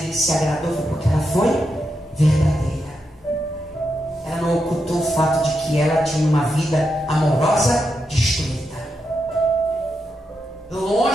se agradou porque ela foi verdadeira. Ela não ocultou o fato de que ela tinha uma vida amorosa destruída,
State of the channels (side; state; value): both; normal; correlation 0.85